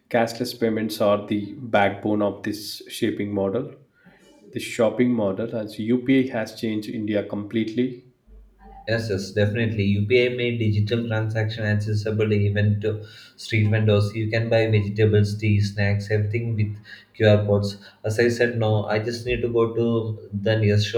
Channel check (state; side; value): identical; both; correlation 1.00